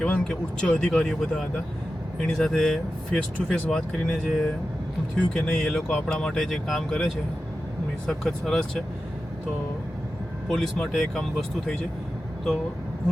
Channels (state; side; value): normal; both; correlation 0.92